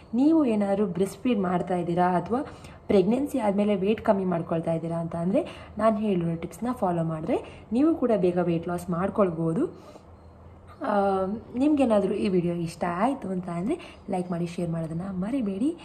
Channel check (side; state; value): both; identical; correlation 1.00